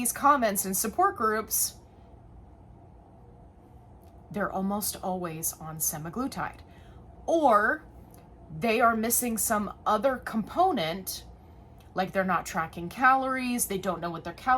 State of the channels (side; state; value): both; identical; correlation 1.00